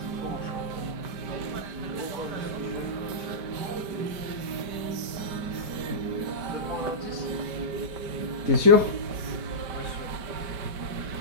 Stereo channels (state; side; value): late; left; 5.1 ms